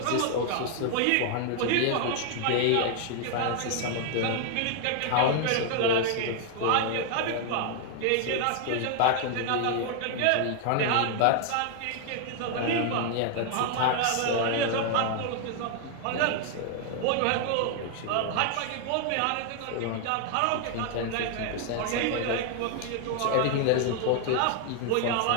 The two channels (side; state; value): both; different; correlation 0.00